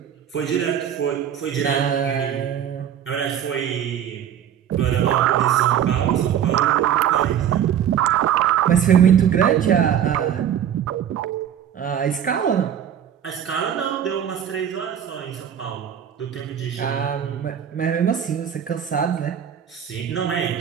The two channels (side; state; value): left; quieter; 9.4 dB